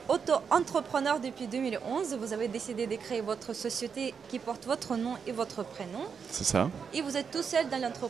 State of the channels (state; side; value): quieter; left; 6.4 dB